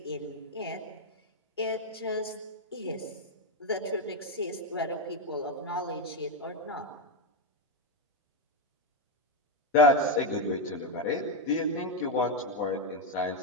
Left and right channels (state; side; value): normal; both; correlation 0.06